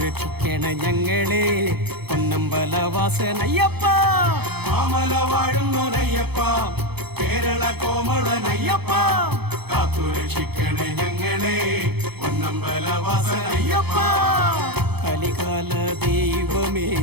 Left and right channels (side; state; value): left; late; 0.97 ms